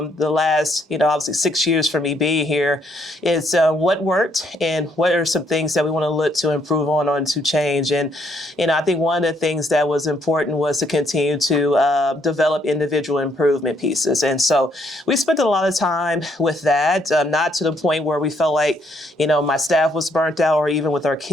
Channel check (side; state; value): both; normal; correlation 0.71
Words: last, obviously 6 years for me being here is what worked and what are some things that we want to look to improve on to change. And, I think one of the things that was important was to continue to develop individual improvement pieces. And so we spent a lot of time with that, not to the point where we felt like, my staff was burnt out, or even with our